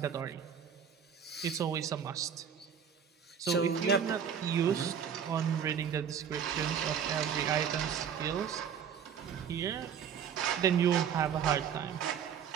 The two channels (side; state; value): left; quieter; 7.8 dB